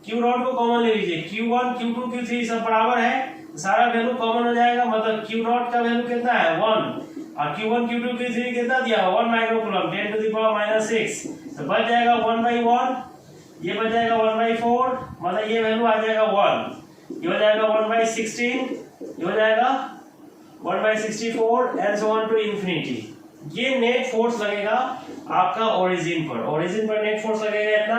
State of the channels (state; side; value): identical; both; correlation 1.00